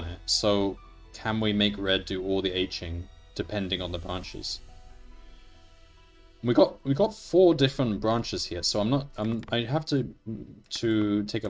it. So can we make red do all the Hing depending on the branches? We got 4 different branches here, so I have to take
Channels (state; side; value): identical; both; correlation 1.00